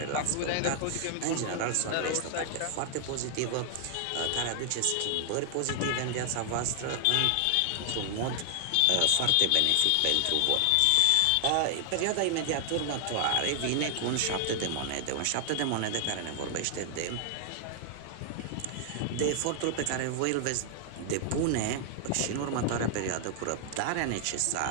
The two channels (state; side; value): different; both; correlation 0.00